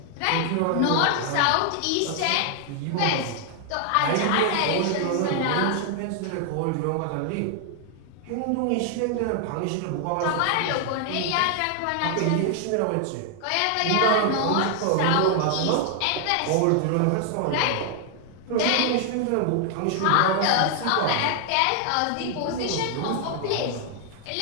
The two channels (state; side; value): different; both; correlation 0.00